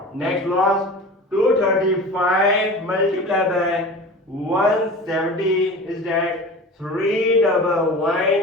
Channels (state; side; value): normal; both; correlation 0.35